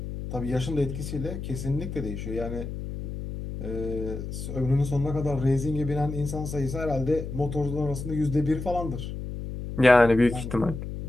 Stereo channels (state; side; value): noise; left; hum, 7 dB below the sound